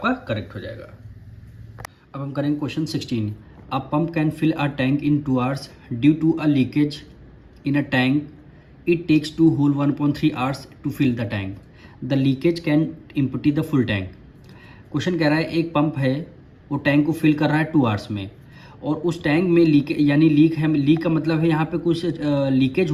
करेक्ट हो जाएगा। अब हम करेंगे question 16। A pump can fill a tank in 2 hours due to a leakage in a tank, it takes 2 whole 1.3 hours to fill the tank, the leakage can empty the full tank. Question कह रहा है एक पंप है वो टैंक को फिल कर रहा है 2 आवर्स में, और उस टैंक में लीक यानी लीक है, लीक का मतलब है यहाँ पे कुछ लीकेज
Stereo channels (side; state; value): both; identical; correlation 1.00